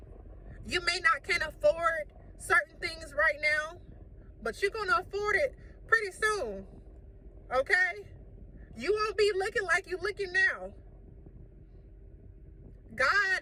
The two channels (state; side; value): identical; both; correlation 1.00